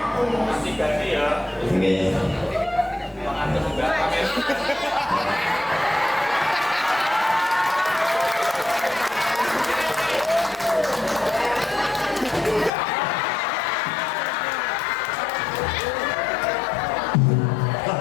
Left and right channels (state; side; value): drops out; right; at 12.7 s